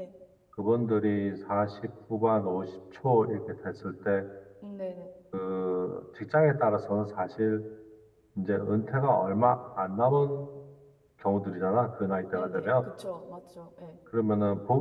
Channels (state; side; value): identical; both; correlation 1.00